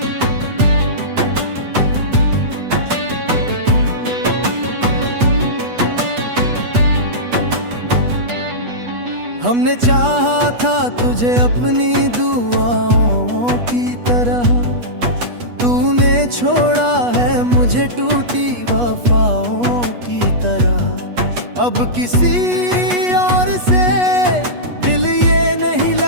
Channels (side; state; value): left; late; 8.3 ms